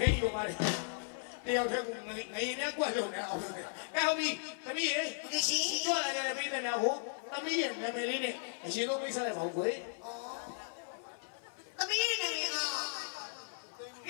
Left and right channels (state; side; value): silent; right; 54 dB below the other